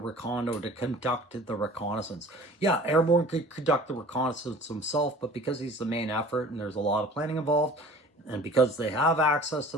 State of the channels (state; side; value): normal; both; correlation 0.46